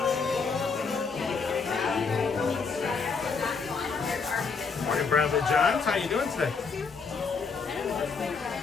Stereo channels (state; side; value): quieter; right; 5.0 dB